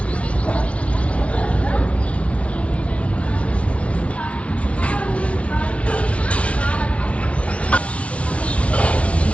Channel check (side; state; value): right; late; 0.063 ms